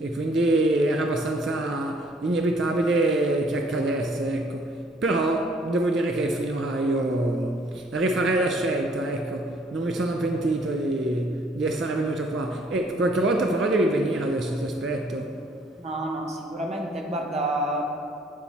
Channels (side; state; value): both; normal; correlation 0.62